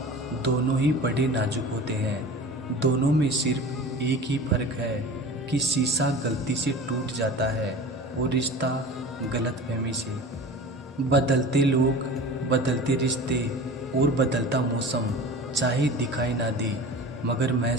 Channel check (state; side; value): normal; both; correlation 0.37